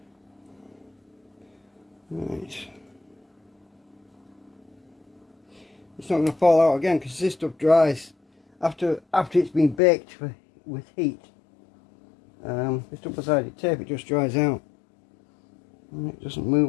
Right. It's not going to fall out again because this stuff dries after it's been baked with heat. This double-sided tape, it just dries out and it doesn't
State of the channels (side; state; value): right; drops out; at 9.8 s